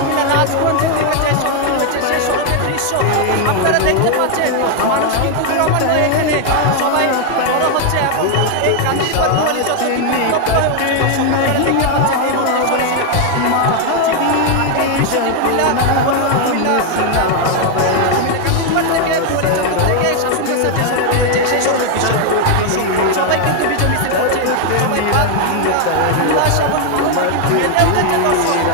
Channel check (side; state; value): both; different; correlation 0.01